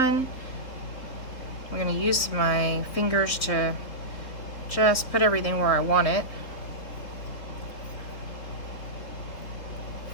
I'm going to use my fingers to just put everything where I want it.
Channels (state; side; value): late; right; 3.6 ms